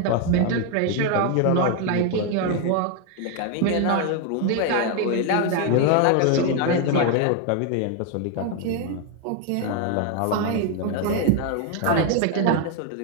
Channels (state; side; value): different; both; correlation 0.01